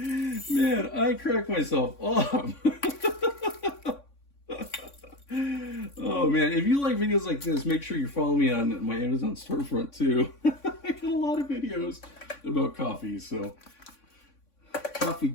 I cracked myself up. Oh man, if you like videos like this, make sure you follow me on my Amazon storefront too. I got a lot of videos about coffee, so coffee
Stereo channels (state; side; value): late; right; 3.6 ms